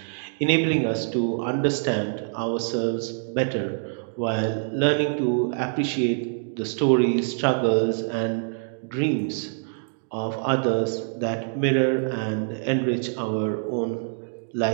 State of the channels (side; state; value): left; silent; digital silence